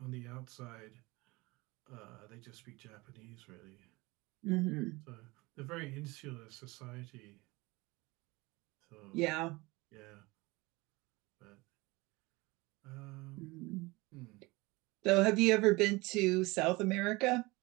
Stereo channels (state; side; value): quieter; left; 23.0 dB